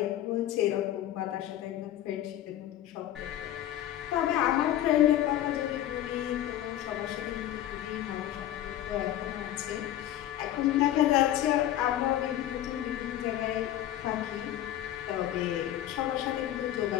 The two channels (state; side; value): quieter; right; 12.6 dB